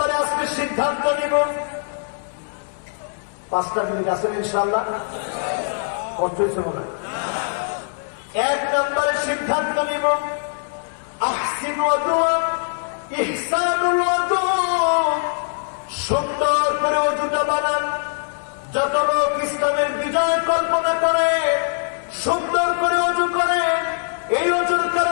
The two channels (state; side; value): silent; right; digital silence